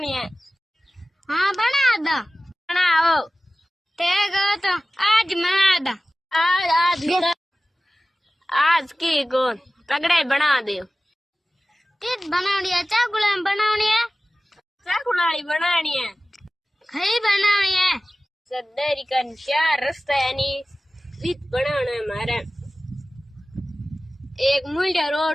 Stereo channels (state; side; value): normal; both; correlation 0.96